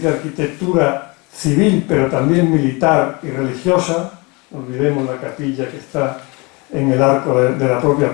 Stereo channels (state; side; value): quieter; right; 27.5 dB